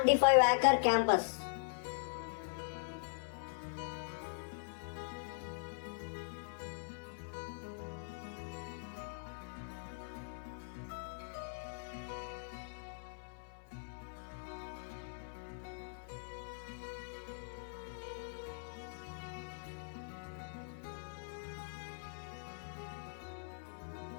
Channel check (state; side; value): silent; right; 50 dB below the other